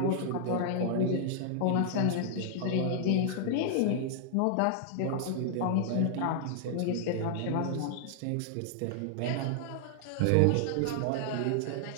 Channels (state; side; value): different; both; correlation -0.01